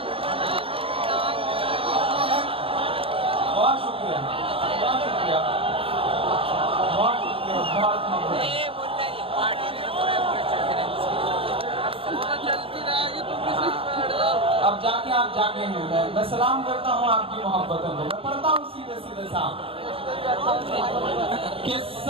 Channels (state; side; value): late; left; 0.27 ms